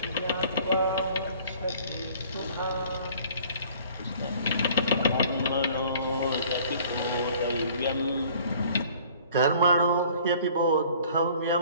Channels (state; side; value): inverted; both; correlation -0.52